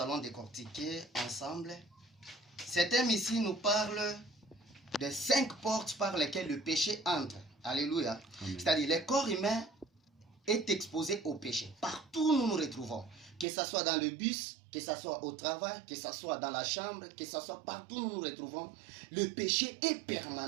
décortiquer ensemble. Ce thème ici nous parle de 5 portes par lesquelles le péché entre. Alléluia. C'est-à-dire, le corps humain est exposé au péché. Partout où nous nous retrouvons, que ce soit dans le bus, que ce soit au travail, que ce soit dans la chambre, que ce soit partout où nous nous retrouvons, le péché est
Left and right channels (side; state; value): left; drops out; at 13.5 s